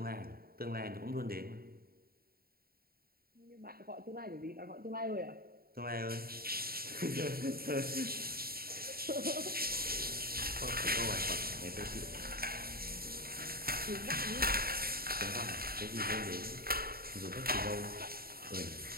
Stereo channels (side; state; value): left; late; 0.44 ms